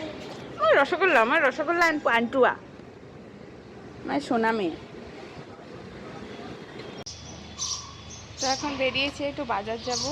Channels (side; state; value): both; identical; correlation 1.00